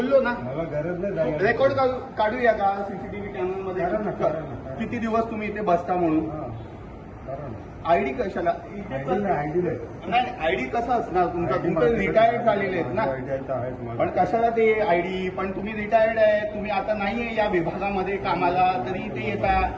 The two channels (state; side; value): identical; both; correlation 1.00